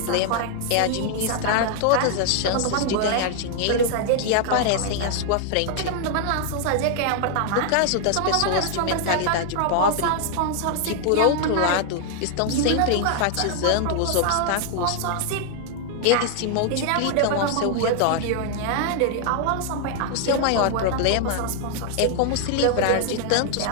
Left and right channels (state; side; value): different; both; correlation 0.00